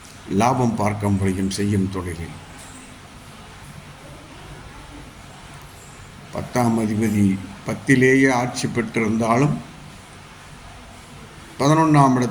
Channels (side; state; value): both; identical; correlation 1.00